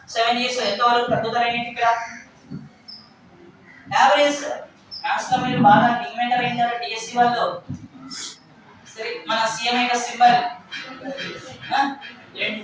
7 ఇయర్స్ ఎంత వరకు తగ్గుదల అయింది ఇక్కడ? యావరేజ్ మ్యాథ్స్ మీరు బాగా డిమాండ్ అయ్యారు డిఎస్సి వాళ్ళు. సరే మన సిఎం యొక్క సింబల్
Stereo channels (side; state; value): both; identical; correlation 1.00